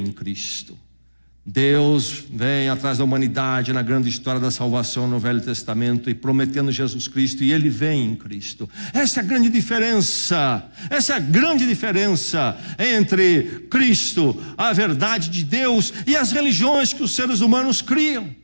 Cristo. Deus vem atrás da humanidade na grande história da salvação no Velho Testamento e prometendo Jesus Cristo, e Ele vem em Cristo. Essa é a grande diferença. Essa é a grande diferença entre Cristo, a verdade de Deus, e as religiões que os seres humanos criam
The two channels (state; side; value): inverted; both; correlation -1.00